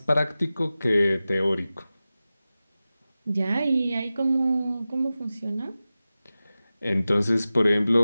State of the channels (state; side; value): inverted; both; correlation -0.95